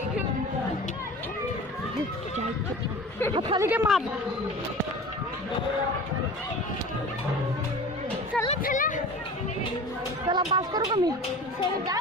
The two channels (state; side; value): normal; both; correlation 0.37